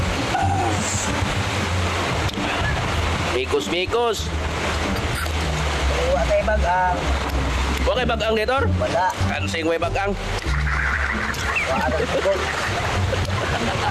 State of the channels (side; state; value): both; identical; correlation 1.00